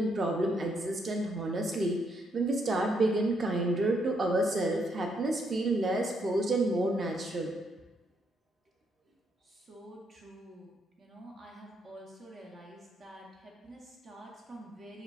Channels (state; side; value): normal; both; correlation 0.75